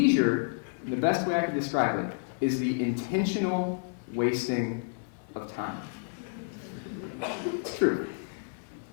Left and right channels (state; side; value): silent; right; 58 dB below the other